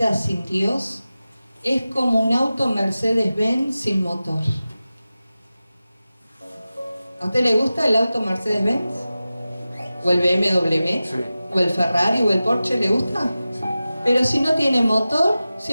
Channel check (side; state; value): both; inverted; correlation -0.95